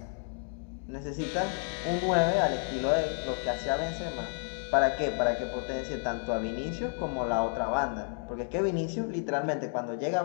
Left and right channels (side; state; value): right; silent; 57 dB below the other